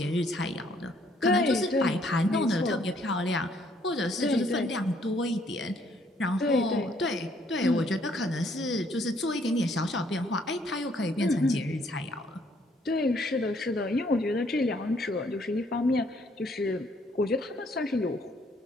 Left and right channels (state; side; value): normal; both; correlation 0.66